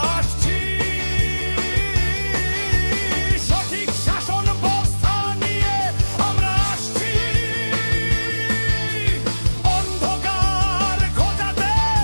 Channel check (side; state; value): both; inverted; correlation -1.00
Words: আসছি, সঠিক শাসন ব্যবস্থা নিয়ে আমরা আসছি, অন্ধকার ঘোচাতে